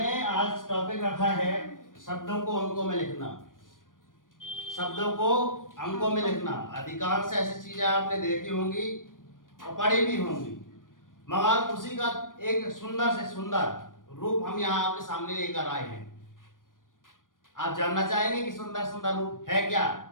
आज टॉपिक रखा है शब्दों को अंकों में लिखना। शब्दों को अंकों में लिखना अधिकांश ऐसी चीजें आपने देखी होंगी और पढ़ी भी होंगी, मगर उसी का एक सुंदर से सुंदर रूप हम यहाँ आपके सामने लेकर आए हैं। आप जानना चाहेंगे कि सुंदर सुंदर रूप है क्या?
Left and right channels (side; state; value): right; late; 0.89 ms